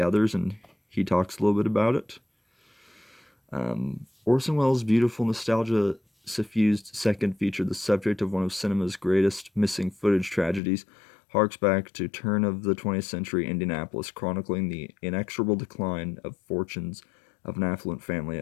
others, and he talks a little bit about it. Orson Welles' beautiful nostalgia-suffused second feature, the subject of one of cinema's greatest missing footage tragedies, harks back to turn of the 20th century Indianapolis, chronicling the inexorable decline of fortunes of an affluent family,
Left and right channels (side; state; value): right; drops out; at 10.6 s